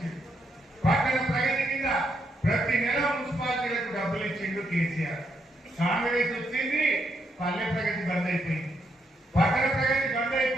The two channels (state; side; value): normal; both; correlation 0.78